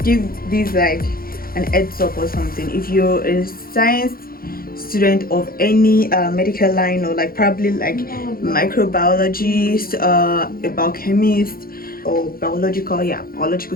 give this an heads up or something. If you're a science student of any medical line, or probably microbiologist, a biochemist, or biological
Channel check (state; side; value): late; right; 0.43 ms